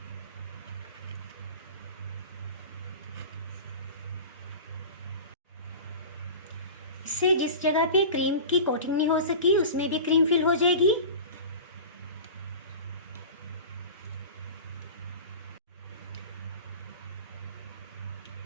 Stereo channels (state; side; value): inverted; both; correlation -0.34